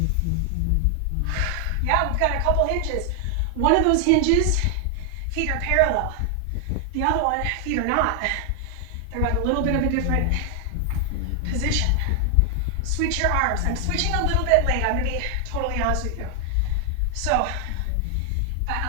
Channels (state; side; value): different; both; correlation 0.00